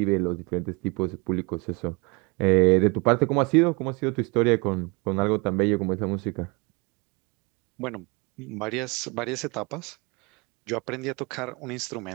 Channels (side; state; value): left; quieter; 28.9 dB